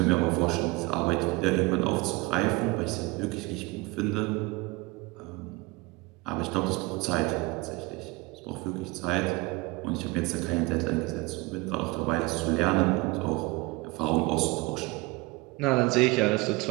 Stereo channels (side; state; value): left; quieter; 23.8 dB